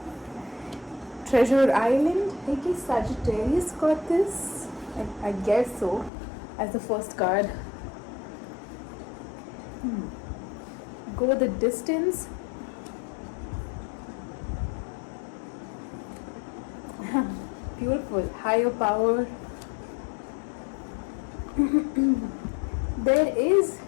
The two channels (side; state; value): right; drops out; at 6.1 s